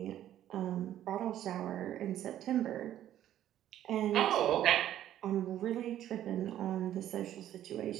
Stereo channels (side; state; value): left; quieter; 11.9 dB